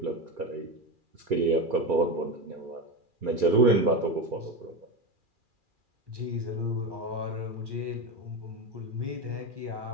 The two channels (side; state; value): left; late; 2.4 ms